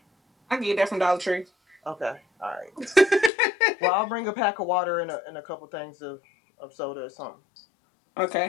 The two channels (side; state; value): right; drops out; at 3.3 s